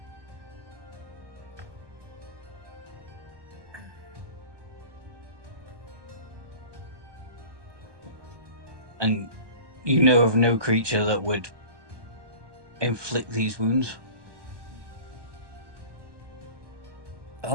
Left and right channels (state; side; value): late; left; 1.2 ms